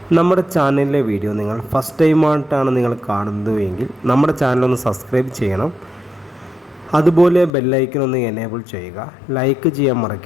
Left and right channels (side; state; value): right; drops out; at 7.5 s